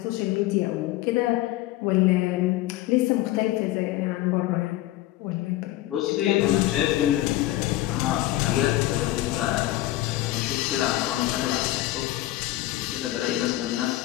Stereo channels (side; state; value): right; quieter; 16.0 dB